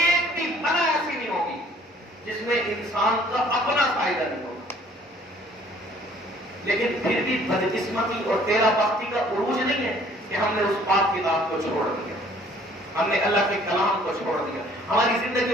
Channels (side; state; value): both; normal; correlation 0.57